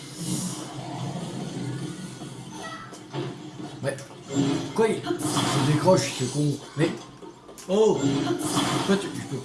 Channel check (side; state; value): both; identical; correlation 1.00